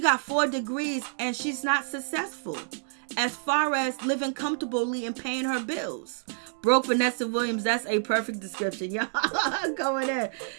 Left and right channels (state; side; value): silent; left; digital silence